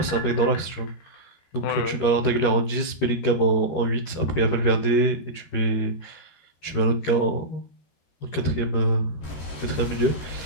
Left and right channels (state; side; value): late; right; 13 ms